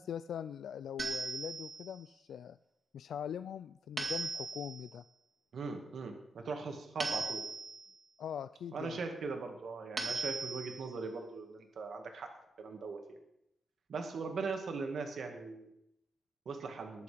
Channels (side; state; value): both; normal; correlation 0.78